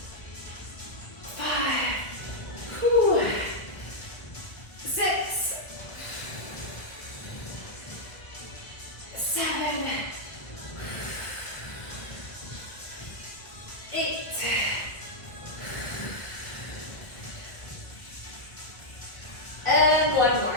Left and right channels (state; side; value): late; right; 1.2 ms